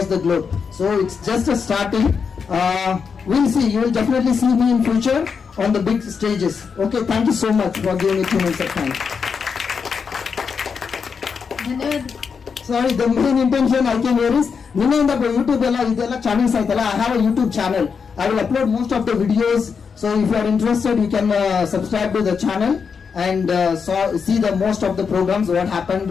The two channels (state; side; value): quieter; right; 5.9 dB